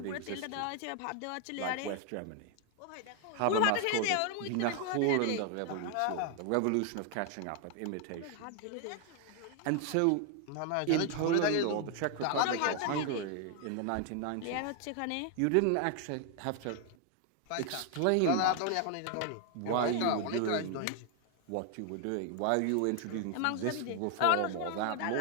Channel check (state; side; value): different; both; correlation 0.00